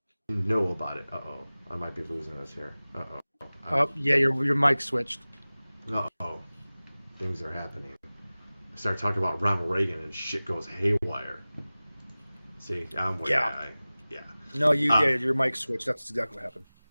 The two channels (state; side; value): inverted; both; correlation -0.98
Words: know about it. Uh-oh. I might be losing us here. Uh-oh. Oh, yeah, your mic switched. Uh-oh. Things are happening. I start talking about Ronald Reagan and shit goes haywire. See, I'm way No, your mic switched. That's exactly what happened.